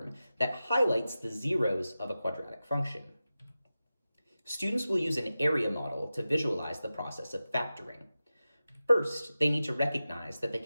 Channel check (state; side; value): inverted; both; correlation -0.94